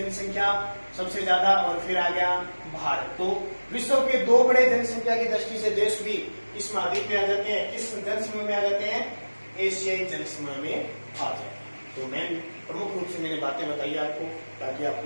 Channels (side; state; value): both; inverted; correlation -1.00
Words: सबसे ज्यादा, और फिर आ गया भारत। तो विश्व के 2 बड़े जनसंख्या की दृष्टि से देश भी इस महाद्वीप में आ जाते हैं। किस जनसमूह में आ जाते हैं, एशियाई जनसमूह में आ जाते हैं। तो मैं प्रमुख रूप से मैंने बातें बताई आपको, ताकि